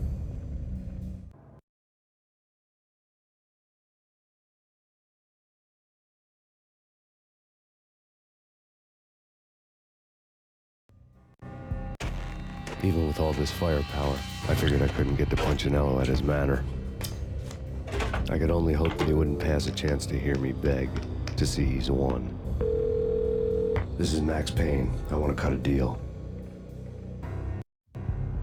Even with all this firepower, I figured I couldn't get to Punchinello at his manor. I could only hope that he wouldn't pass a chance to hear me beg to see he's won. This is Max Payne. I want to cut a deal.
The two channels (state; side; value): identical; both; correlation 1.00